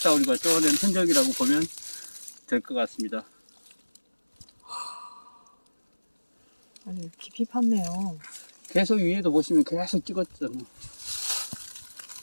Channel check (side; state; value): both; inverted; correlation -1.00